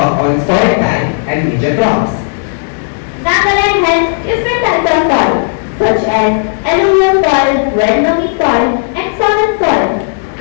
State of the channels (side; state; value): right; silent; digital silence